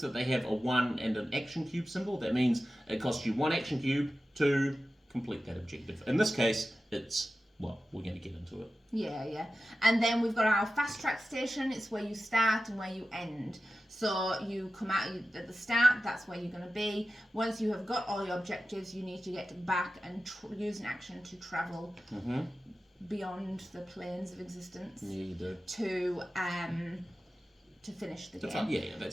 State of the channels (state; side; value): normal; both; correlation 0.94